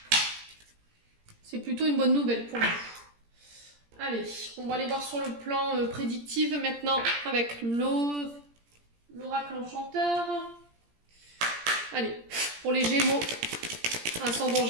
C'est plutôt une bonne nouvelle pour vous. Allez, on va aller voir sur le plan prédictif maintenant avec l'oracle enchanteur. Allez, pour les Gémeaux, ascendant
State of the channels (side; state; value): left; late; 17 ms